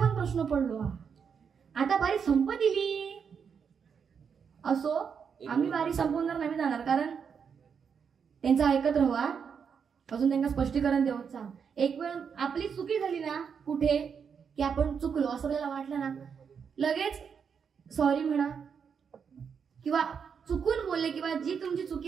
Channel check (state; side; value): quieter; left; 6.7 dB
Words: प्रश्न पडलो. आता बारी संप दिली असो, आम्ही बारी संपवणार नाही जाणार, कारण त्यांचं ऐकत राहा, अजून त्यांना स्पष्टीकरण देऊचा. एक वेळ आपली चुकी झाली ना कुठे की आपण चुकलो असं आपल्याला वाटलं ना, लगेच सॉरी म्हणा किंवा चुकून बोलले किंवा जी तुमची